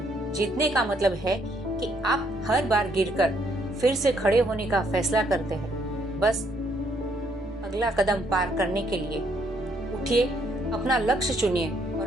जीतने का मतलब है कि आप हर बार गिरकर फिर से खड़े होने का फैसला करते हैं। बस अगला कदम पार करने के लिए उठिए, अपना लक्ष्य चुनिए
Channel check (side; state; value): both; normal; correlation 0.70